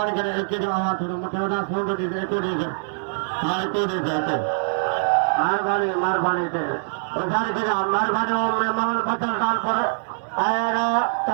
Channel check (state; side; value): silent; left; digital silence